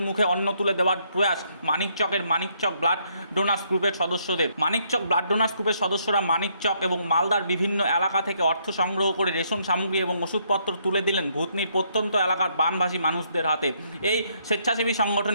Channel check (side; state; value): both; inverted; correlation -0.71